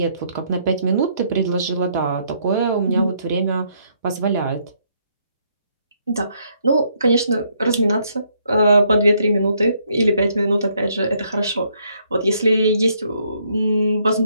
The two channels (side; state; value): both; inverted; correlation -0.71